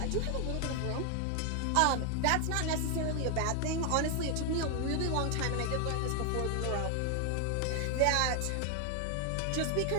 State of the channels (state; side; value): different; both; correlation 0.00